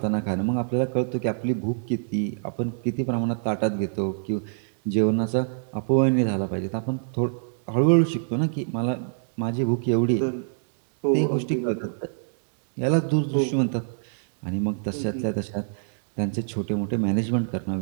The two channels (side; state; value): left; silent; digital silence